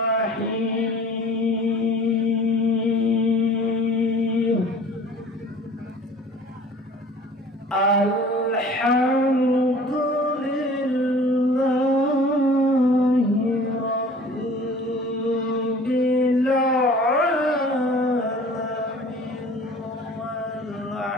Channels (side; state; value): both; normal; correlation 0.47